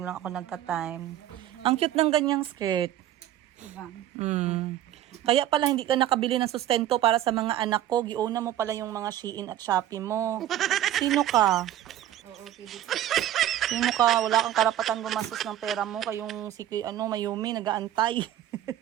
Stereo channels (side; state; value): left; quieter; 12.4 dB